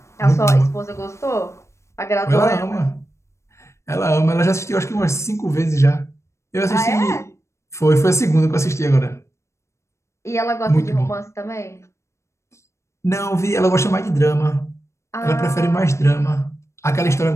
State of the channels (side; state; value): right; late; 0.14 ms